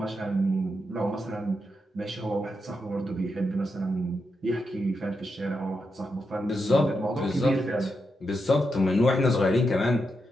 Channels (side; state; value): both; normal; correlation 0.85